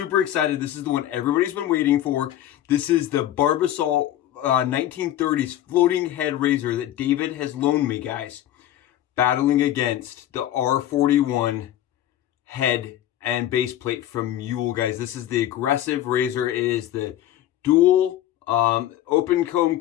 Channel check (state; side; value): quieter; right; 12.6 dB